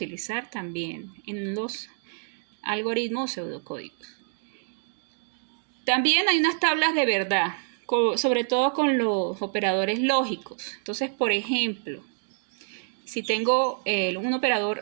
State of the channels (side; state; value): left; silent; 60 dB below the other